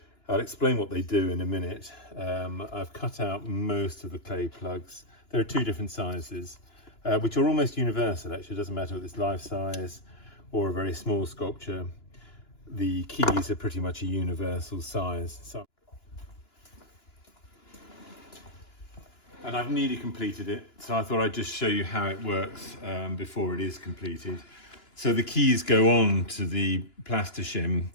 I'll explain what they do in a minute. I've cut out most of the clay plugs. There are two different sizes, which are almost universal actually. It doesn't matter if it's life size or a very small sculpture. The keys are pretty much a universal size. And I've nearly completed it, so I thought I'd just show you how it works before it is completed. So the keys go on to the Plastishim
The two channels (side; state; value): right; late; 2.9 ms